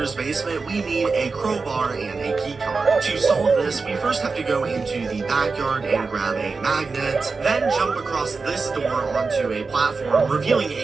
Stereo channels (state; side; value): quieter; left; 4.4 dB